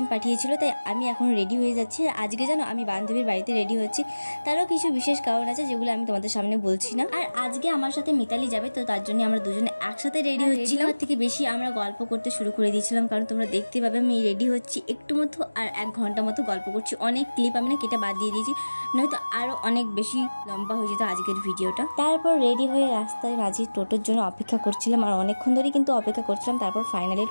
পাঠিয়েছিল, তাই আমি এখন রেডি হয়ে যাচ্ছি। আর আজকে জানো আমি বান্ধবীর বাড়িতে রেডি হচ্ছি, তারও কিছু বিশেষ কারণ আছে যেগুলো আমি তোমাদের সামনে বলছি না। আর আজকে আমার সাথে মিতালি যাবে, তো তার জন্য আমরা দুজনে একসাথে রেডি হচ্ছিলাম। তার থেকে বেশি আমরা গল্প করতে শুরু করে দিয়েছিলাম, কারণ তোমরা দেখতে পাবে আমি রেডি হচ্ছি একটু মতো আর 1 ঘন্টা মতো গল্প করছি। অনেক ক্লিপ আমি না কেটে বাদ দিয়ে দিয়েছি, নয়তো আরও অনেক বেশি লম্বা হয়ে যেত আজকের ভিডিওটা। তারপর রেডি হয়ে রাস্তায় মাঝি টোটোর জন্য অপেক্ষা করছিলাম, আর অনেকক্ষণ ধরেই কিন্তু অপেক্ষা করছিলাম। তারপর ফাইনালি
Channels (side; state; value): both; inverted; correlation -1.00